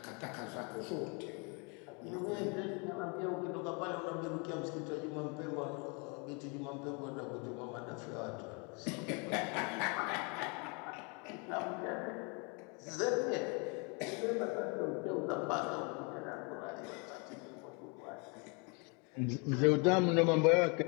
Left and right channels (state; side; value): quieter; right; 33.1 dB